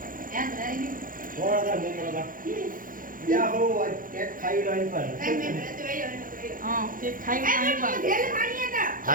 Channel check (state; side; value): late; left; 0.40 ms